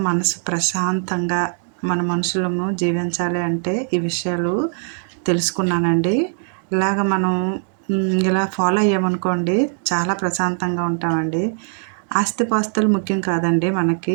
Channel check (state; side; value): silent; left; 65 dB below the other